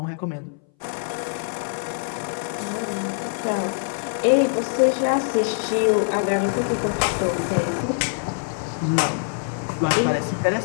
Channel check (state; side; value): silent; right; 60 dB below the other